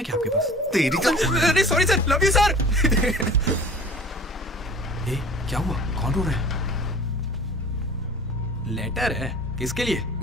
क्या आपके पास? तेरी अरे sorry sir, love you sir. क्या हुआ? कौन रो रहा है? लेटर है? किसके लिए?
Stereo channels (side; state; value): both; normal; correlation 0.44